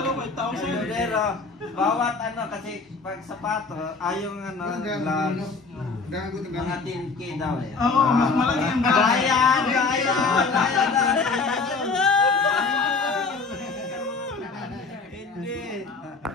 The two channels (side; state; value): right; quieter; 4.3 dB